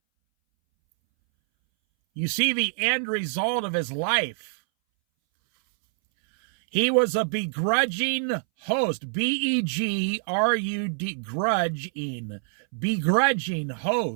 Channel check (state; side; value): silent; left; 60 dB below the other